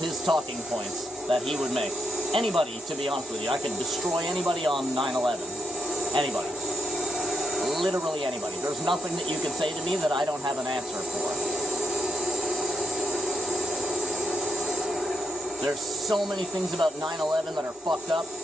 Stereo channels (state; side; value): normal; both; correlation 0.82